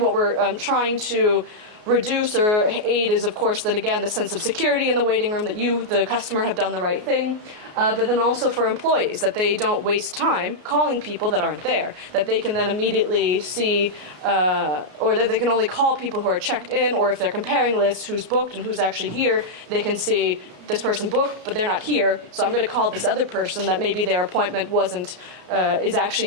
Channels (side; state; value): left; late; 33 ms